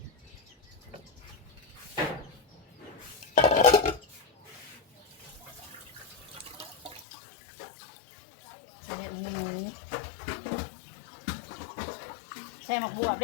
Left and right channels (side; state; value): right; drops out; at 7.1 s